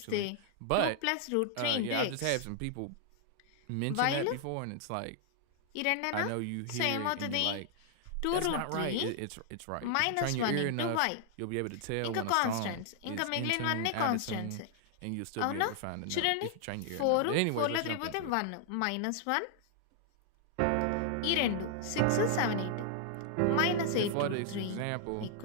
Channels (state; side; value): different; both; correlation 0.00